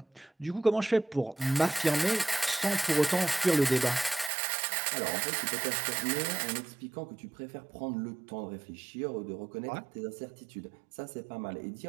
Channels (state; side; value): drops out; left; at 4.3 s